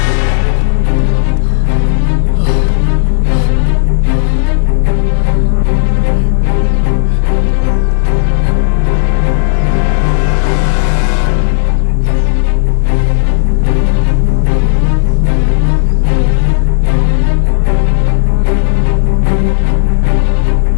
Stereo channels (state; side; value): silent; right; digital silence